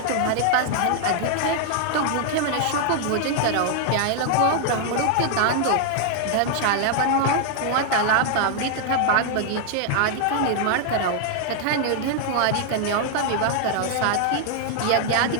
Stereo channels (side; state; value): both; different; correlation 0.00